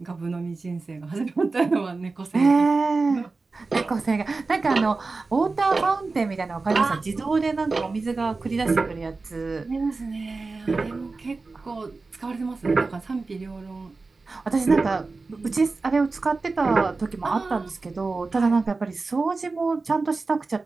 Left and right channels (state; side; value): quieter; left; 3.8 dB